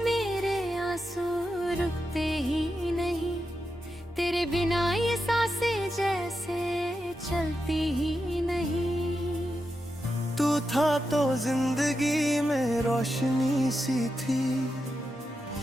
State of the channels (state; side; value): normal; both; correlation 0.88